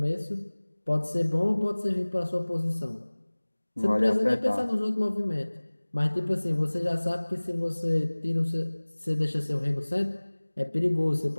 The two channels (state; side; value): inverted; both; correlation -1.00